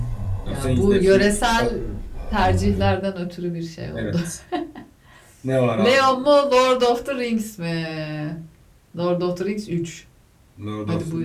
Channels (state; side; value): identical; both; correlation 1.00